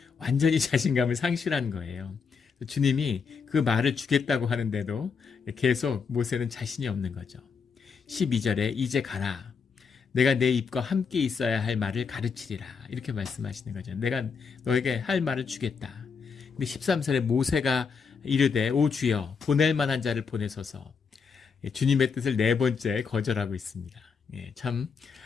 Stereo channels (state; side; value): quieter; right; 5.7 dB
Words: 완전히 자신감을 상실한 거예요. 주님이 그 말을 주겠다고 하는데도 계속 모세는 자신이 없는 거죠. 12절에 이제 가라, 내가 내 입과 함께 있어야 할 말을 가르치리라, 이렇게 말씀하시는 거죠. 내가 너에게 할 말을 주겠다. 근데 13절에 모세가 이르되 오 주여 보낼 만한 자를 보내소서, 주님의 뜻을 네 번째 거절하고 있습니다. 참